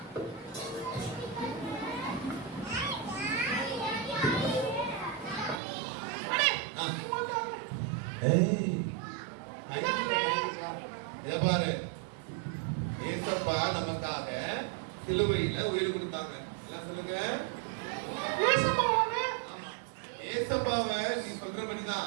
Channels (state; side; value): drops out; left; at 5.6 s